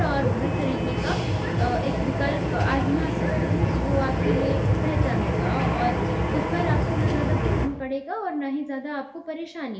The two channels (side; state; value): both; identical; correlation 1.00